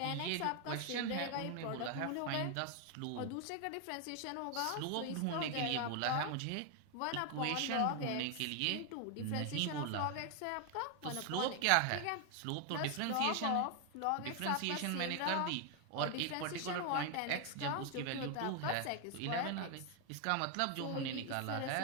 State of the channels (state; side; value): different; both; correlation 0.01